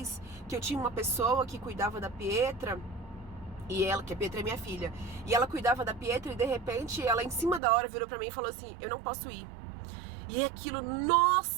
que eu tinha uma pessoa que cuidava da Pietra, e ela, que a Pietra é minha filha, e ela cuidava da Pietra e de repente ela em cima da hora virou pra mim e falou assim, eu não posso ir. E aquilo,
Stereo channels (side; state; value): left; drops out; at 7.6 s